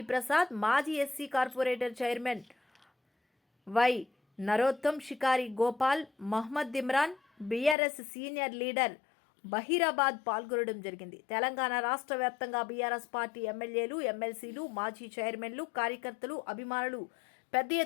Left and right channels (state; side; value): drops out; right; at 7.8 s